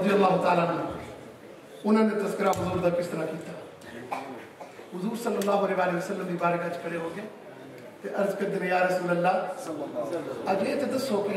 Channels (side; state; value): both; identical; correlation 1.00